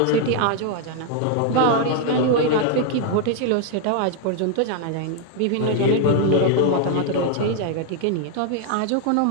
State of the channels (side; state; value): both; different; correlation 0.00